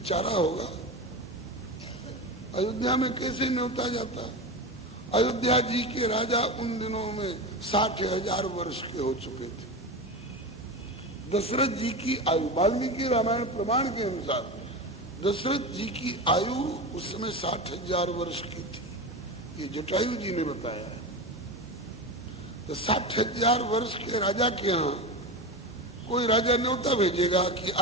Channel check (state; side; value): normal; both; correlation 0.22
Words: होगा, अयोध्या में कैसे न्योता जाता। अयोध्या जी के राजा उन दिनों में 60,000 वर्ष के हो चुके थे। दशरथ जी की आयु वाल्मीकि रामायण प्रमाण के अनुसार दशरथ जी की आयु उस समय 60,000 वर्ष की थी, ये जटायु जी ने बताया है। तो 60,000 वर्ष के राजा के यहाँ कोई राजा न्योता भेजेगा कि